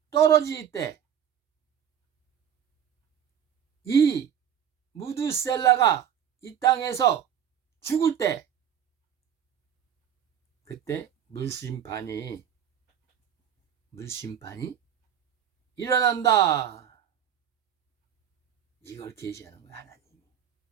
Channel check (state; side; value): quieter; left; 9.1 dB